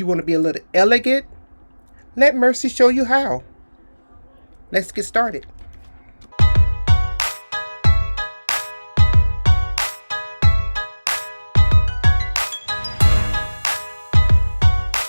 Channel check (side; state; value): both; inverted; correlation -1.00